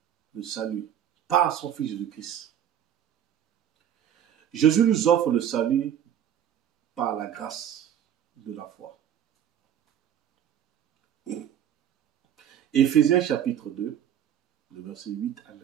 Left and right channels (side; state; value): left; quieter; 9.8 dB